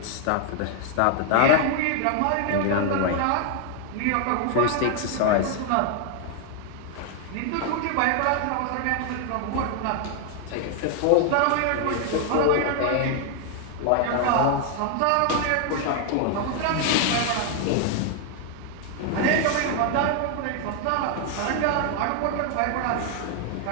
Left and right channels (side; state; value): both; different; correlation 0.00